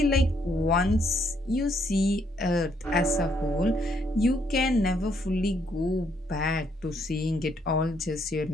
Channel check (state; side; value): normal; both; correlation 0.71